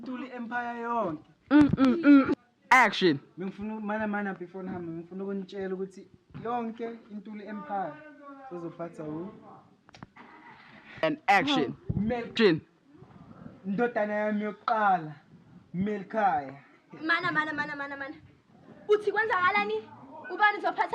Empire yonke. Action. Ngifuna mana before ngihamba, ngifuna ukunitshela ukuthi yonke Intuli Empire uzophatha And action. Action. Ndodana yami yokuqala, Melkhaya. Mana. Uthi kwenzakalani? Ubani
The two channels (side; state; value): both; identical; correlation 1.00